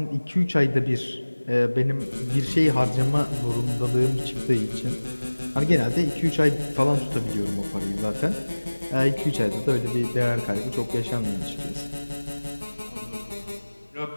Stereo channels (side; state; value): both; inverted; correlation -1.00